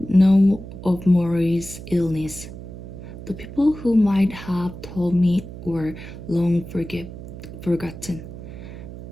know of Morrie's illness. The people who might have told me were long forgotten.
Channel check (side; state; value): right; noise; hum, 12 dB below the sound